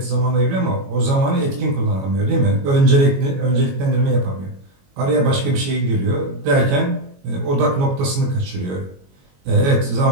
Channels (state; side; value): late; left; 22 ms